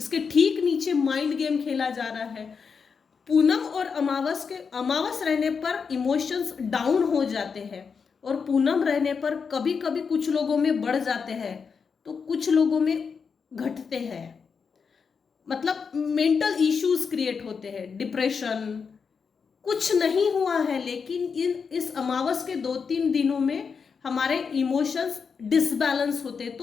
ठीक नीचे माइंड गेम खेला जा रहा है। पूनम और अमावस रहने पर इमोशंस डाउन हो जाते हैं, और पूनम रहने पर कभी कभी कुछ लोगों में बढ़ जाते हैं तो कुछ लोगों में घटते हैं। मतलब मेंटल इश्यूज क्रिएट होते हैं, डिप्रेशन, कुछ नहीं हुआ है, लेकिन इस अमावस के 2-3 दिनों में हमारे इमोशंस डिसबैलेंस होते हैं।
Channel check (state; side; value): quieter; right; 5.8 dB